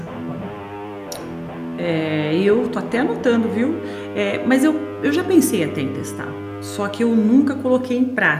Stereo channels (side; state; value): both; identical; correlation 1.00